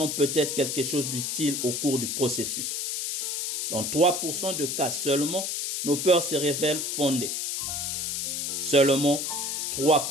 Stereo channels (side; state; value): left; noise; hiss, 2 dB below the sound